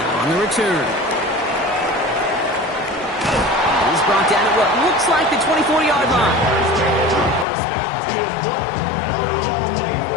on the return. He's brought down at what looks like the 24-yard line.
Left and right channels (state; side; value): drops out; right; at 7.5 s